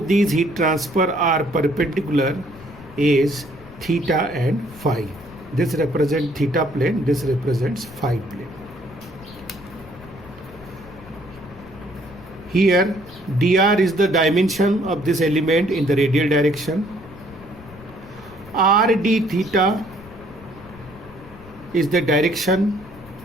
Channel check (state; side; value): noise; left; rumble, 19 dB below the sound